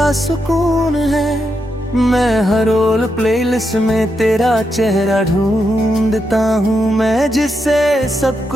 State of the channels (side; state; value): both; normal; correlation 0.83